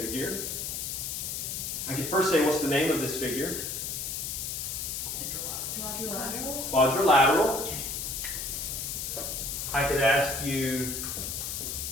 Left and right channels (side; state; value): left; noise; hiss, 3 dB below the sound